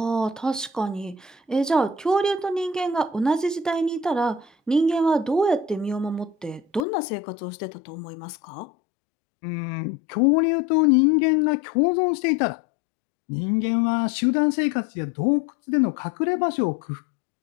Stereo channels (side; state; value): right; drops out; at 6.9 s